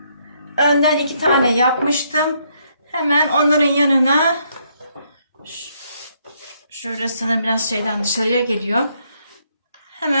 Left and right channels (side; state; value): both; inverted; correlation -0.72